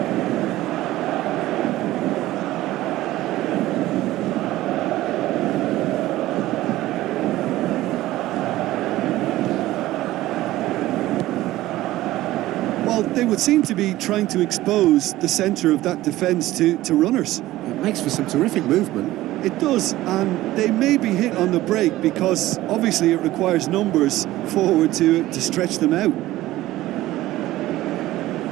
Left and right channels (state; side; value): quieter; left; 16.1 dB